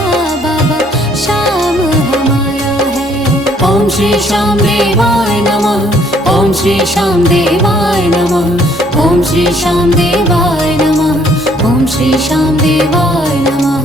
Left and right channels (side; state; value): both; normal; correlation 0.64